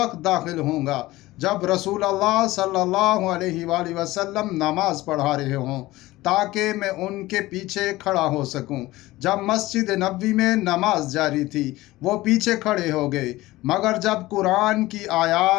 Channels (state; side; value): quieter; right; 18.2 dB